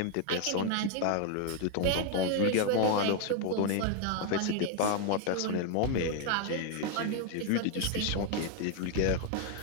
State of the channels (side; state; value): both; different; correlation 0.01